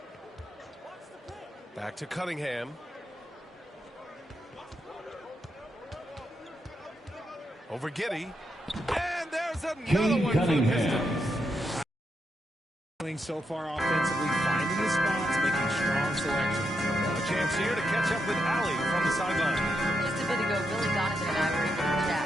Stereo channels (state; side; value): normal; both; correlation 0.83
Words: Back to Cunningham. Over Giddey. And there's another Cade one for the Cunningham. Pistons. Doing so far offensively, finding his spots, making strong selections. A chance here to catch up with Allie from the sideline. Just a bit ago, Billy Donovan and I were able to chat.